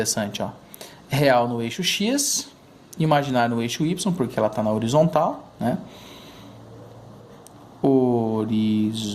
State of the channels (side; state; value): both; identical; correlation 1.00